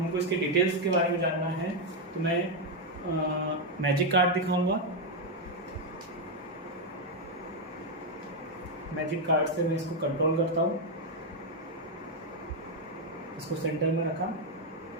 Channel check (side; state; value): both; normal; correlation 0.02